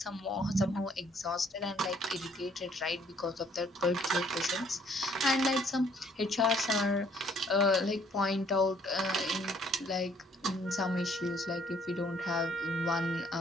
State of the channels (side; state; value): both; normal; correlation 0.63